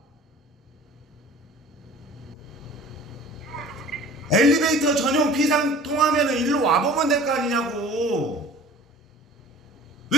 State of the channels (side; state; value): both; normal; correlation 0.44